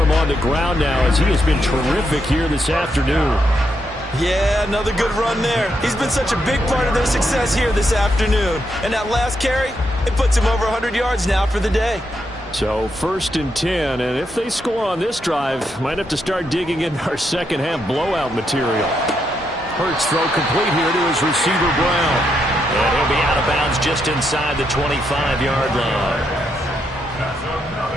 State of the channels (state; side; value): normal; both; correlation 0.80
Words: on the ground now as he has been terrific here this afternoon. Yeah, another good run there. He's been such a big part of their success here this afternoon. And that last carry, it puts him over 100 yards now for the day. So 1st and 10, and if they score on this drive, might have to start digging in our second-half blowout material. Hurts throw complete here to his receiver, Brown. And he'll be out of bounds just inside the 25-yard line. That's